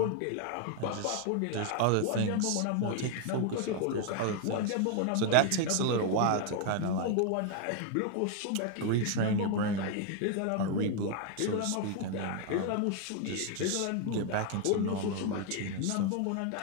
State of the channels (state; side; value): different; both; correlation 0.00